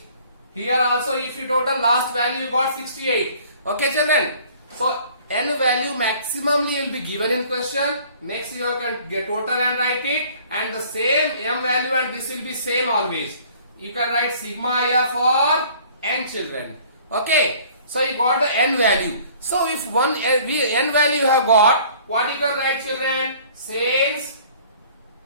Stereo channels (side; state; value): both; inverted; correlation -0.53